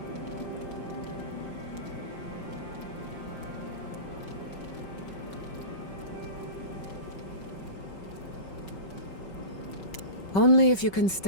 Only if you can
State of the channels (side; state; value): right; late; 5.3 ms